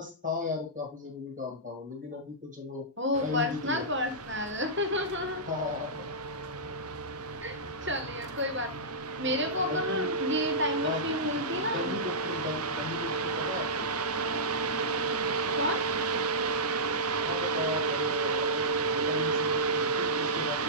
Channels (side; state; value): both; normal; correlation -0.15